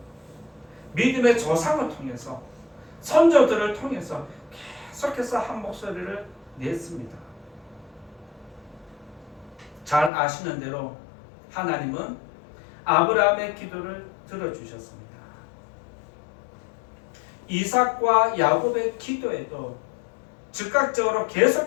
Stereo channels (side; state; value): right; drops out; at 10.1 s